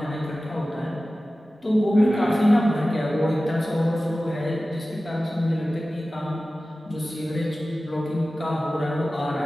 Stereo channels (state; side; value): normal; both; correlation 0.96